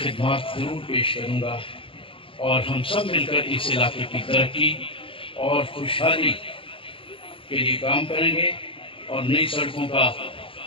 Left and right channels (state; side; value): late; right; 0.26 ms